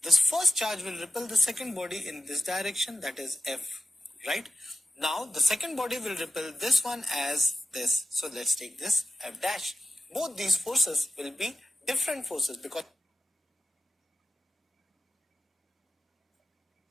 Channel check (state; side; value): normal; both; correlation 0.93